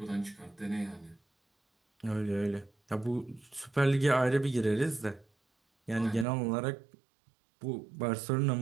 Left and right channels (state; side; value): drops out; left; at 6.2 s